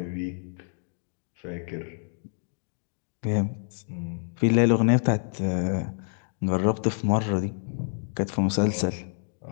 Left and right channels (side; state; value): right; silent; digital silence